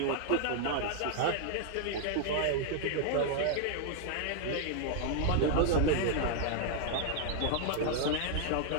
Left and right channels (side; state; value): both; different; correlation 0.00